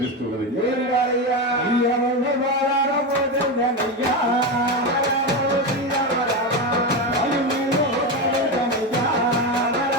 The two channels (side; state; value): both; normal; correlation 0.15